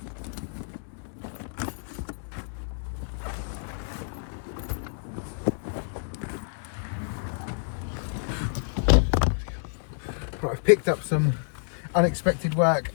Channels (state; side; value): silent; right; 59 dB below the other